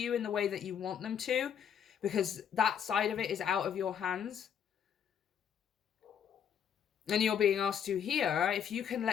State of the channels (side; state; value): right; quieter; 8.4 dB